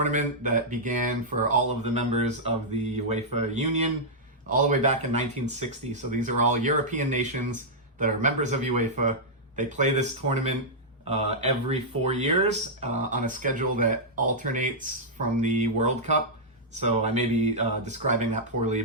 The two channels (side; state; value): both; normal; correlation -0.08